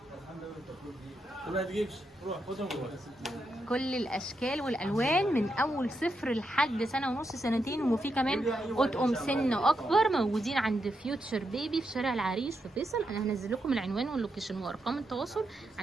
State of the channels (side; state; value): both; normal; correlation 0.83